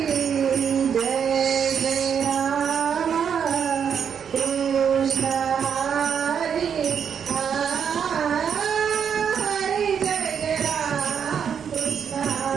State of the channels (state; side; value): quieter; left; 7.5 dB